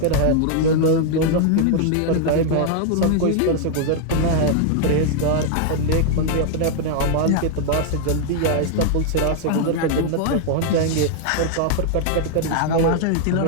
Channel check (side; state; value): both; different; correlation 0.00